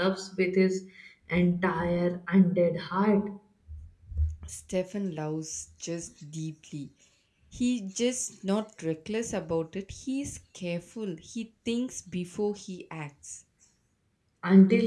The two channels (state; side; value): identical; both; correlation 1.00